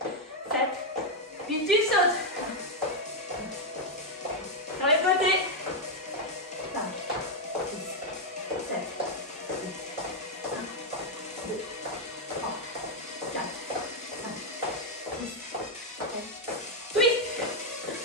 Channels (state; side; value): normal; both; correlation 0.01